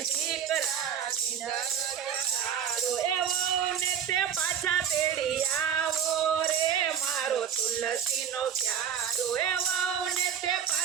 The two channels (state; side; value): quieter; left; 8.4 dB